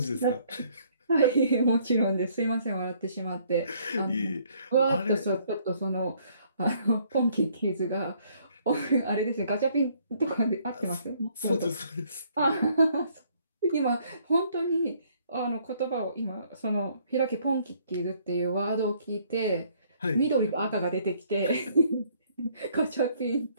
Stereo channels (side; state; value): both; inverted; correlation -0.64